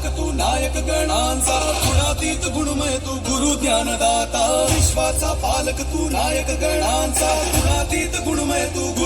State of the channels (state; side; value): identical; both; correlation 1.00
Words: तू नायक गणांचा, गुणातीत गुणमय तू गुरु ज्ञानदाता, विश्वाचा पालक तू नायक गणांचा, गुणातीत गुणमय तू